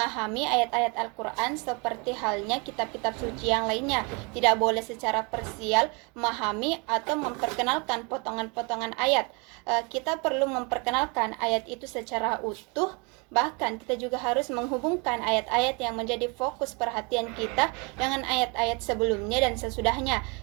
ayat-ayat Al-Quran seperti halnya kitab-kitab suci yang lainnya. Tidak boleh secara parsial memahami atau memperkenalkan potongan-potongan ayat. Kita perlu memperkenalkan ayat itu secara utuh. Bahkan kita juga harus menghubungkan ayat-ayat yang menjadi fokus perhatian kita dengan ayat-ayat sebelumnya dan sesudahnya.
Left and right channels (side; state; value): left; quieter; 31.2 dB